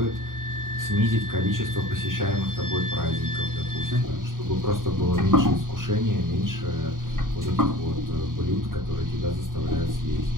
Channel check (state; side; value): late; left; 0.90 ms